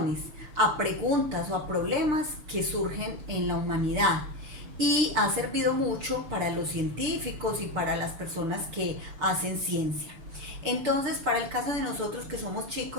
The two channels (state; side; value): late; left; 6.7 ms